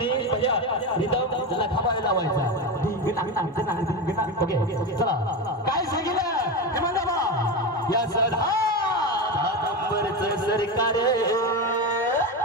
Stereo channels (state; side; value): normal; both; correlation 0.18